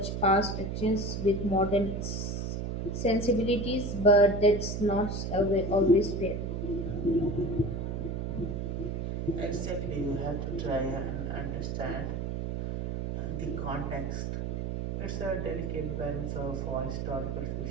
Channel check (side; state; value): right; noise; hum, 3 dB below the sound